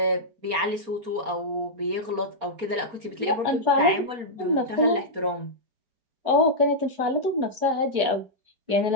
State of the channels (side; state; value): left; late; 4.3 ms